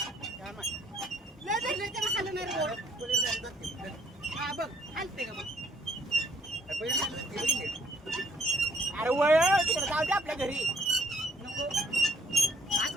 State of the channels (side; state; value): both; normal; correlation 0.66